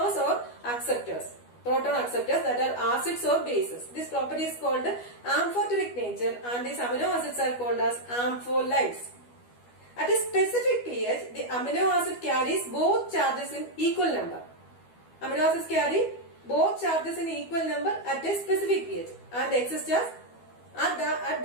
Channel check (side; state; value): right; late; 12 ms